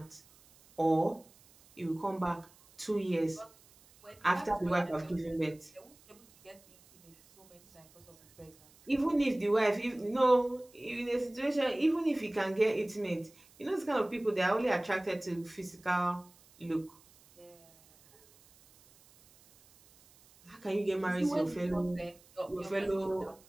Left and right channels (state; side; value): noise; right; hiss, 27 dB below the sound